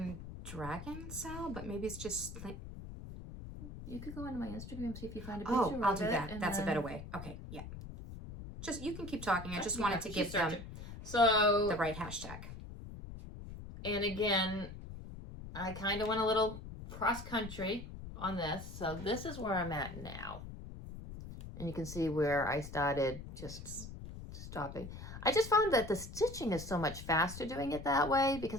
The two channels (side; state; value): left; noise; rumble, 11 dB below the sound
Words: Dragon Cell, but maybe it's just. You could go onto my Instagram, see if you find a picture Oh, I'll of do it, that. and That's a then- better way. Okay, yeah. Just, you can keep talking. I just wanted to Keep give them searching. So, the right hashtag. and again, I kind of went a little cross-country on this. So this is where I'm at now. And you can see where I started just stopping. I just found that the stitching is so much faster doing it that way